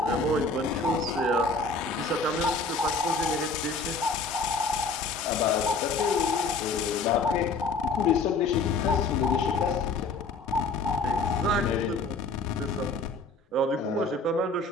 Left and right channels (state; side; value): quieter; right; 3.6 dB